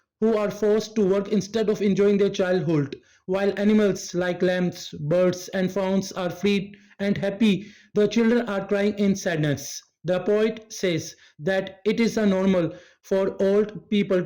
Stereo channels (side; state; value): both; identical; correlation 1.00